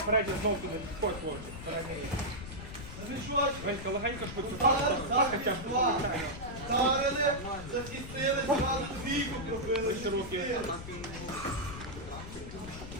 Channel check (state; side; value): noise; left; rumble, 11 dB below the sound